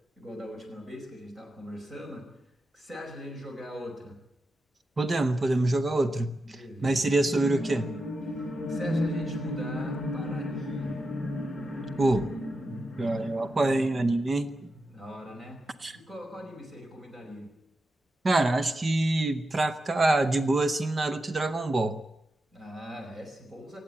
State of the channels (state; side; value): normal; both; correlation 0.89